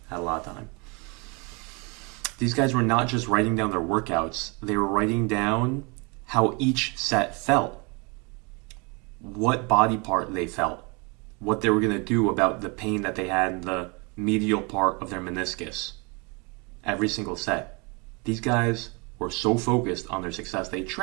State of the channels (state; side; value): quieter; left; 30.4 dB